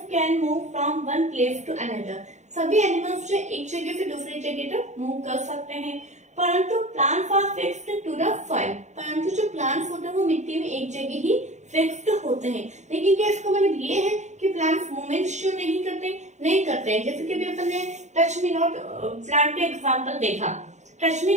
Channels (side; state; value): left; late; 0.34 ms